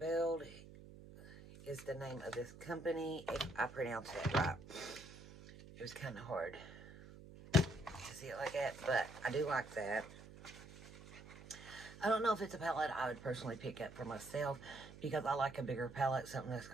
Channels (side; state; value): right; noise; hum, 16 dB below the sound